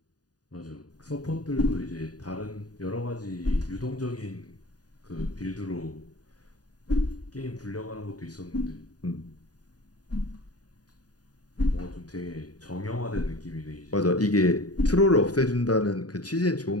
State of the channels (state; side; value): late; right; 0.68 ms